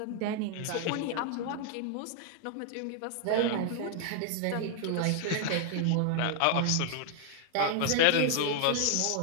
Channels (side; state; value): both; different; correlation 0.00